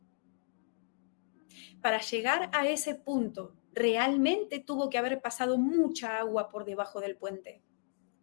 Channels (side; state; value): right; silent; digital silence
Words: Para llegar a ese punto, realmente tuvo que haber pasado mucha agua por debajo del puente,